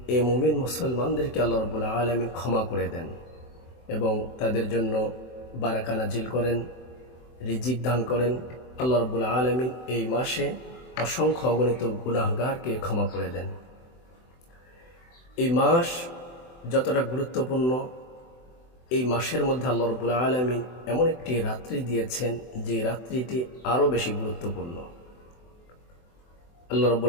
এই মুমিন মুসলমানদেরকে আল্লাহ রাব্বুল আলামিন ক্ষমা করে দেন এবং তাদের জন্য বারাকা নাজিল করেন, রিজিক দান করেন। আল্লাহ রাব্বুল আলামিন এই মাসে অসংখ্য অগণিত গুনাহগারকে ক্ষমা করে দেন। এই মাস যতটা গুরুত্বপূর্ণ, এই মাসের মধ্যে আল্লাহ রাব্বুল আলামিন এমন একটি রাত্রি দিয়েছেন যে রাত্রিটি আরও বেশি গুরুত্বপূর্ণ। আল্লাহ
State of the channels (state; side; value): late; right; 24 ms